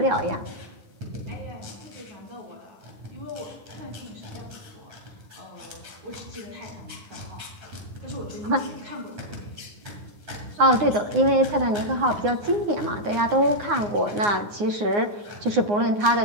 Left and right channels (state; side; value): late; left; 9.7 ms